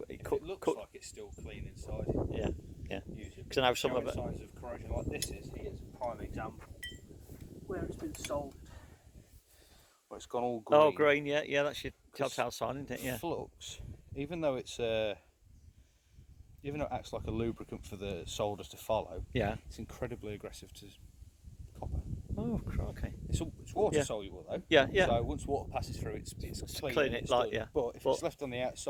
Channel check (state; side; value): identical; both; correlation 1.00